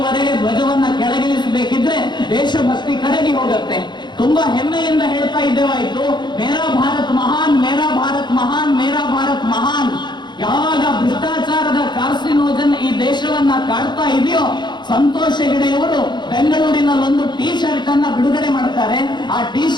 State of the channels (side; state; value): right; late; 0.21 ms